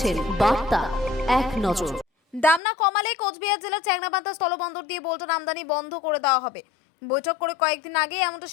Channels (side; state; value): right; drops out; at 2.6 s